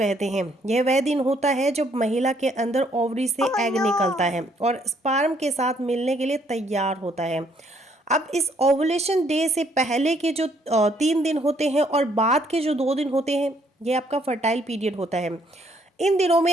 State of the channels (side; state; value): both; normal; correlation 0.67